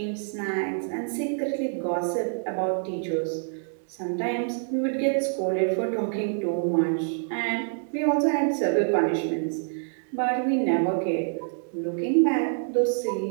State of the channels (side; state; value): left; silent; digital silence